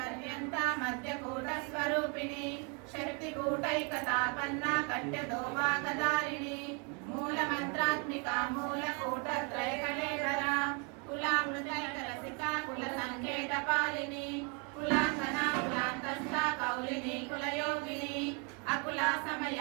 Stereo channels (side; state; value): left; quieter; 34.9 dB